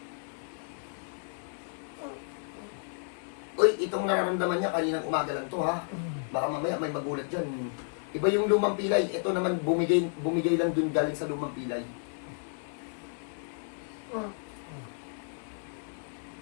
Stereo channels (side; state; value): right; silent; 57 dB below the other